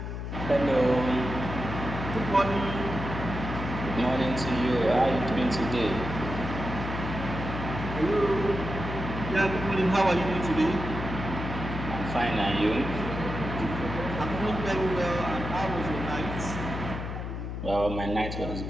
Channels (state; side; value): noise; left; hum, 5 dB below the sound